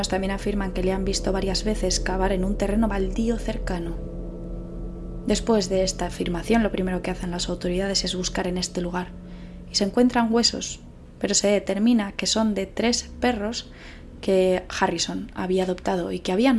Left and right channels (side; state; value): both; identical; correlation 1.00